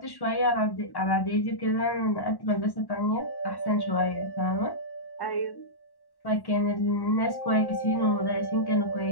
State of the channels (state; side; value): late; right; 1.1 ms